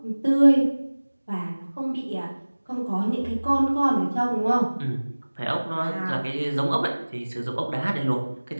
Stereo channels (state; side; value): inverted; both; correlation -1.00